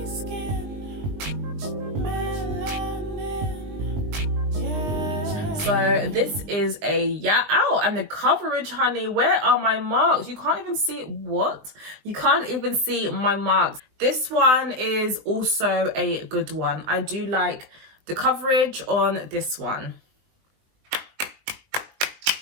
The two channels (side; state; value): left; late; 20 ms